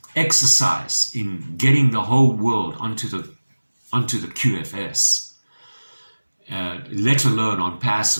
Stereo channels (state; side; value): inverted; both; correlation -1.00